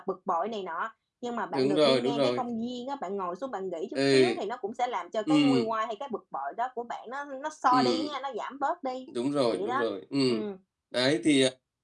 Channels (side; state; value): both; identical; correlation 1.00